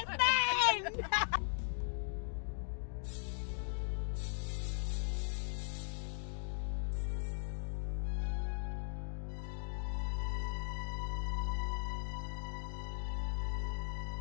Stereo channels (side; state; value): right; silent; digital silence